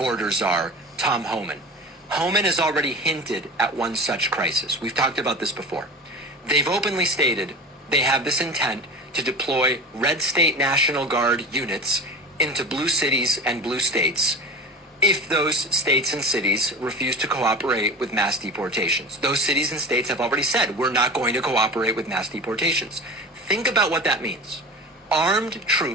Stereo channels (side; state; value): both; normal; correlation 0.33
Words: czar, Tom Homan. Homan has already hinted at one such crisis. We've talked about this before. They've openly stated they have this intent to deploy red state National Guard units into blue cities and blue states if those states and cities refuse to cooperate with mass deportations. Those cities and states have already said, we're not going to cooperate with mass deportations. Think about what that means. Armed